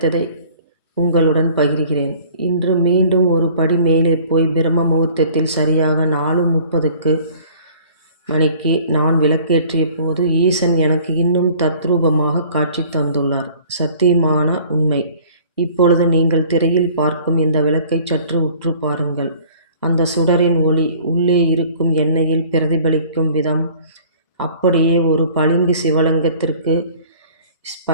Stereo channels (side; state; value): both; inverted; correlation -0.51